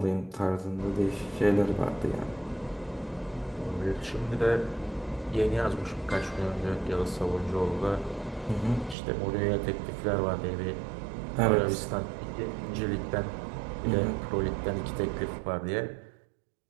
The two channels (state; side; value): drops out; left; at 9.0 s